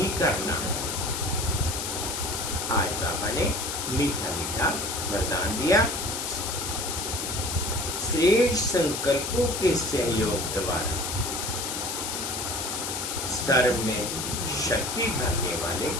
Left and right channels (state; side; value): noise; left; hiss, 3 dB below the sound